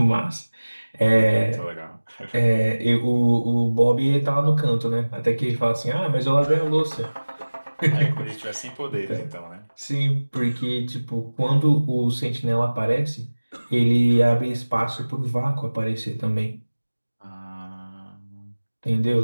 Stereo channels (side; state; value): both; inverted; correlation -1.00